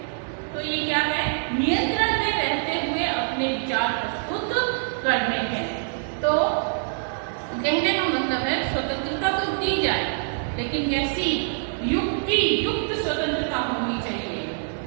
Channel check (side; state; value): left; silent; digital silence